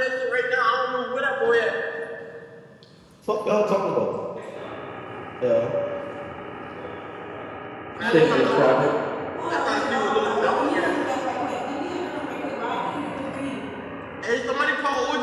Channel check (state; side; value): identical; both; correlation 1.00